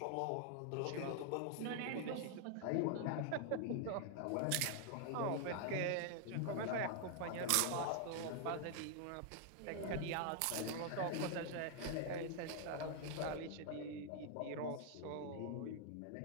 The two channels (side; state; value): both; different; correlation 0.00